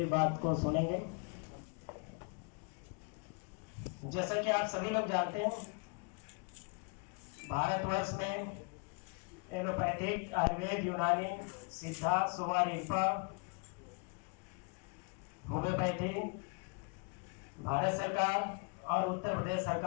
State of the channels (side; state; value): right; quieter; 35.9 dB